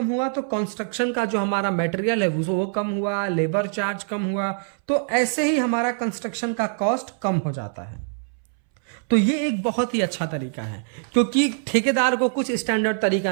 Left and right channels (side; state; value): left; silent; 63 dB below the other